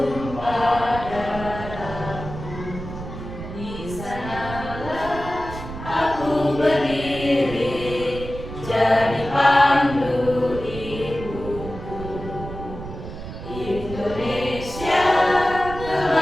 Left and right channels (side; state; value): right; noise; rumble, 10 dB below the sound